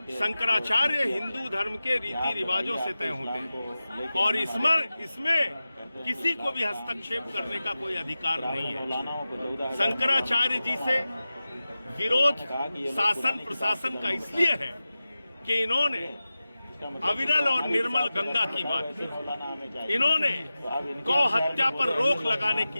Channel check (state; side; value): inverted; both; correlation -0.95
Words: शंकराचार्य हिंदू धर्म के रीति रिवाजों से तय होते हैं और इसमें किसी को भी हस्तक्षेप करने का कोई अधिकार नहीं है। शंकराचार्य जी से विरोध शासन प्रशासन का इसलिए है कि इन्होंने अविरल और निर्मल गंगा की बात की, इन्होंने गौ हत्या पर रोक लगाने